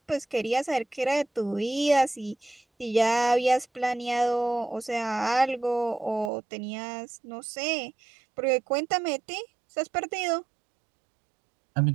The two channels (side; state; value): left; drops out; at 6.3 s